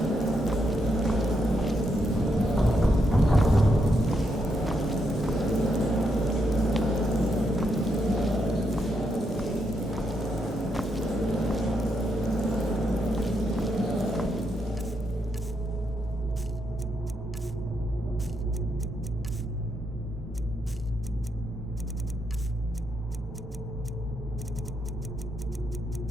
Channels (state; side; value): normal; both; correlation 0.80